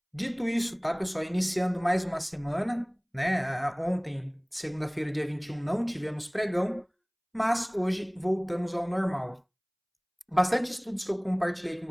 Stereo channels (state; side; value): identical; both; correlation 1.00